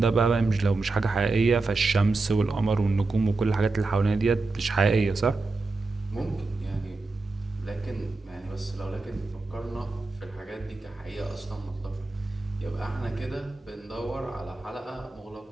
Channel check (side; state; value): left; quieter; 3.5 dB